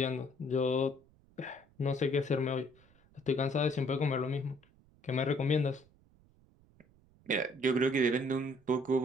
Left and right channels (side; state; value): right; noise; rumble, 30 dB below the sound